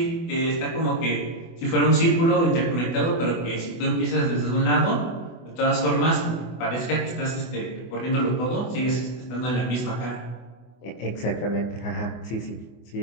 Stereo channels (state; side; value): late; right; 24 ms